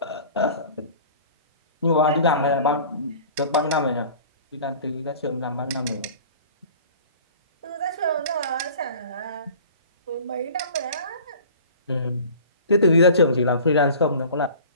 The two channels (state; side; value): inverted; both; correlation -0.44